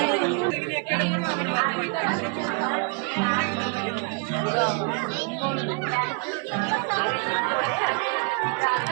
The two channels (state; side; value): quieter; left; 34.6 dB